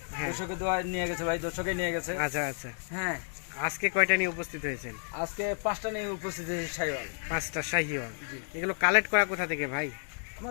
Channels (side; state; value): right; silent; 57 dB below the other